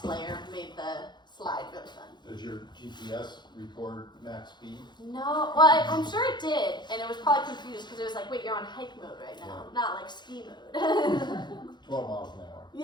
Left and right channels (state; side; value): late; right; 0.21 ms